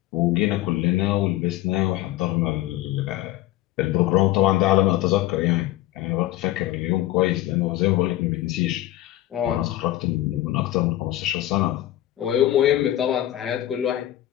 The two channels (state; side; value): quieter; right; 14.8 dB